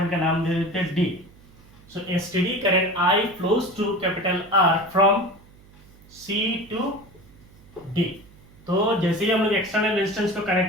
का नाम दे देते हैं D। So a steady current I flows through capital R from C to D। तो जैसे ही हम लोग एक्सटर्नल रेजिस्टेंस को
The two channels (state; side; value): noise; right; hum, 25 dB below the sound